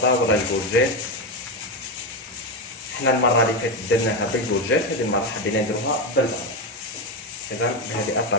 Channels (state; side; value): normal; both; correlation 0.12